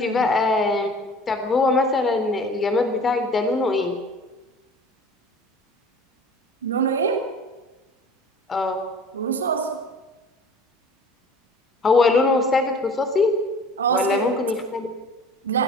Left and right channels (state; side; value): normal; both; correlation 0.45